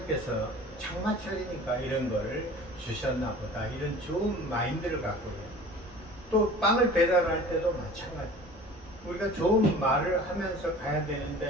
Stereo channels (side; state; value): both; normal; correlation 0.43